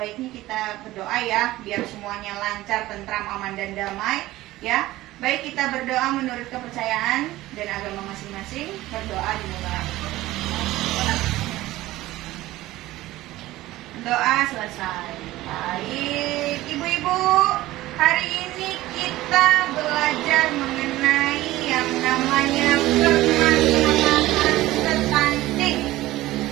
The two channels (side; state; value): left; quieter; 16.9 dB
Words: kita berdoa ya, biar semuanya lancar, tentram, aman dan damai ya. Baik, kita berdoa menurut kepercayaan dan agama masing-masing. Berdoa dimulai. Doa selesai. Baik, Ibu-ibu, hari ini kita belajar mengenai yang namanya permasalahan stunting.